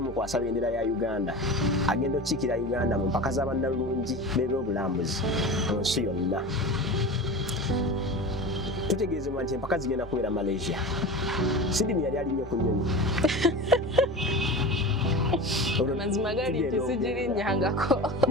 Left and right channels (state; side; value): normal; both; correlation 0.31